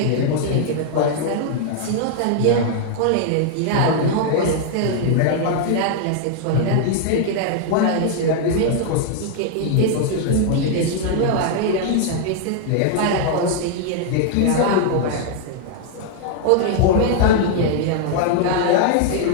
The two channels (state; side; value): different; both; correlation -0.01